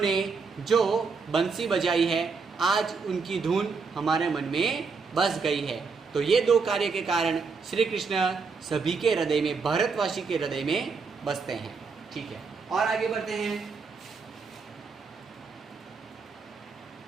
जो बंसी बजाई है, आज उनकी धुन हमारे मन में बस गई है। तो ये दो कार्य के कारण श्री कृष्ण सभी के हृदय में, भारतवासी के हृदय में बसते हैं। ठीक है, और आगे बढ़ते हैं।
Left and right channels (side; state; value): left; quieter; 4.9 dB